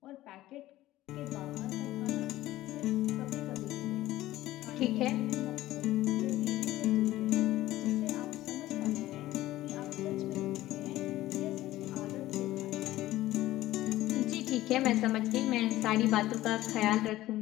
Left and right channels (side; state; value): right; quieter; 15.7 dB